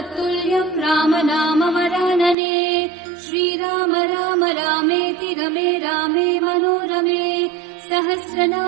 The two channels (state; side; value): drops out; left; at 2.4 s